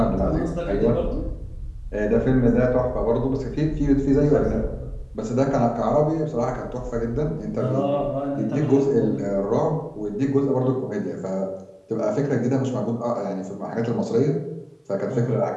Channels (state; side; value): identical; both; correlation 1.00